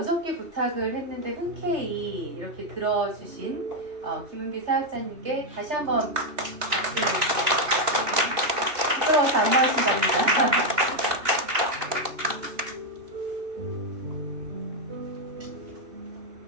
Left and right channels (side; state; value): left; late; 3.3 ms